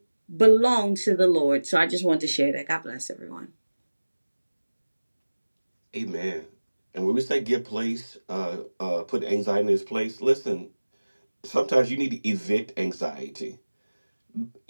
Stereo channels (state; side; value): inverted; both; correlation -1.00